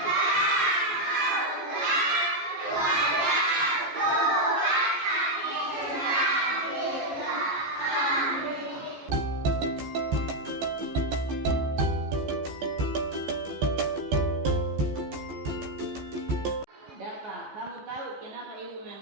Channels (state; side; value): late; left; 14 ms